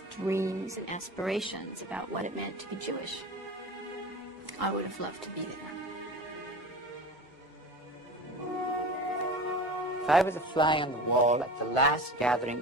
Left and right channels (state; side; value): normal; both; correlation 0.33